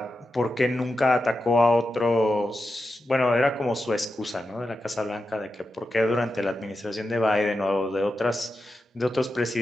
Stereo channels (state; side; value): normal; both; correlation 0.89